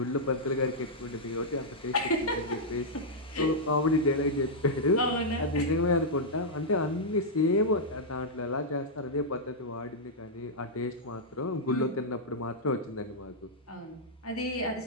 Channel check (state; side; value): normal; both; correlation -0.07